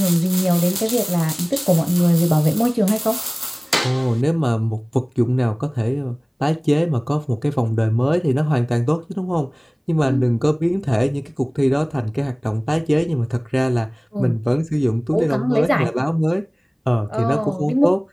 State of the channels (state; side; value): identical; both; correlation 1.00